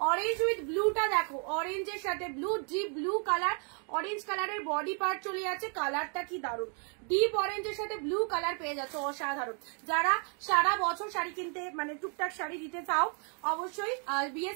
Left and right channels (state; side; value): quieter; left; 39.7 dB